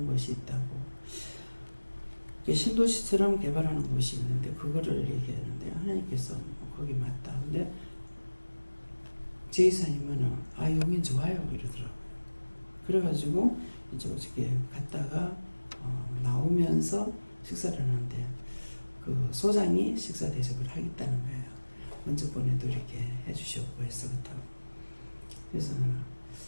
것이 있다고. 신도시처럼 개발하는 곳이 있는데 그거를 얘기했는데 하나님께서 거기 맞다. 근데 제이사님은 용인 좋아요 이러더라고요. 그래가지고 이제 어저께 갔다가 나오면서 식사를 하는데 그 소장이 식사 대접을 하겠다는 거예요. 먼저 보내도 이렇게 해주셨고 해서 그렇다고. 그래서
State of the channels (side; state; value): both; inverted; correlation -1.00